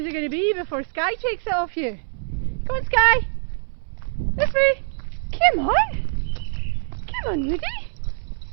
it going to be before Sky takes it off you? Come on, Sky. This way. Come on. Come on, Woody.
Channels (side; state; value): left; silent; 63 dB below the other